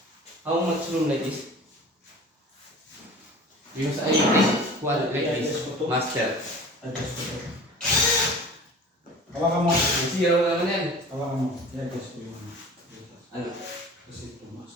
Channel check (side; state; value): both; normal; correlation 0.41